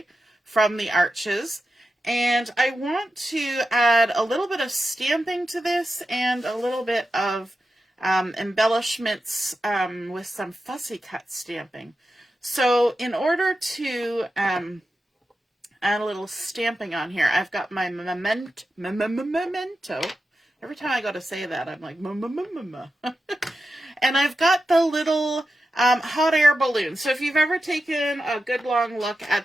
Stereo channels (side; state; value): both; normal; correlation 0.90